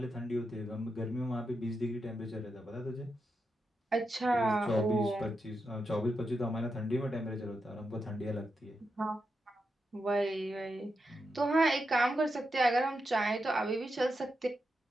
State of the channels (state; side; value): normal; both; correlation 0.86